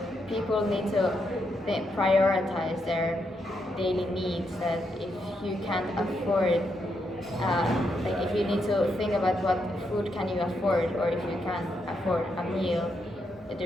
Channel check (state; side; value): normal; both; correlation 0.80